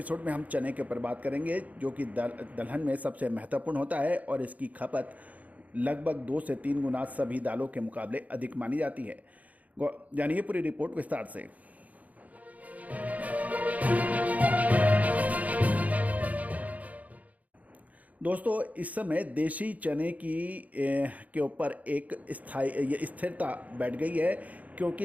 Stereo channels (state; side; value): late; left; 0.074 ms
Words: में हम चने के ऊपर बात करेंगे, जो कि दलहन में सबसे महत्वपूर्ण होता है और इसकी खपत लगभग 2 से 3 गुना सभी दालों के मुकाबले अधिक मानी जाती है। जानिए पूरी रिपोर्ट विस्तार से। दोस्तों इस समय देशी चने के ऊपर एक स्थिरता बैठ गई है,